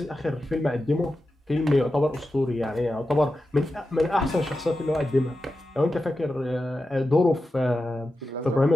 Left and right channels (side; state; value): both; normal; correlation 0.91